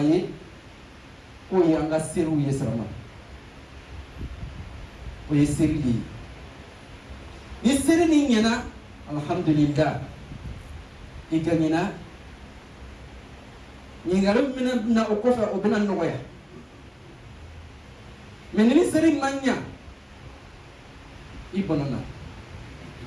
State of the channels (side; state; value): both; identical; correlation 1.00